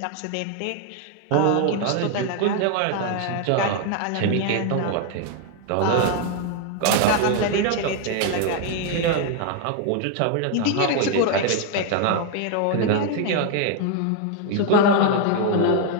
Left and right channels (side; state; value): both; different; correlation 0.00